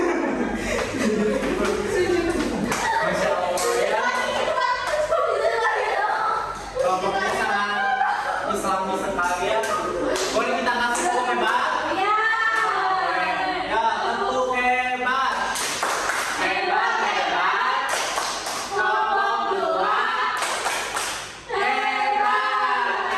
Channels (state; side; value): identical; both; correlation 1.00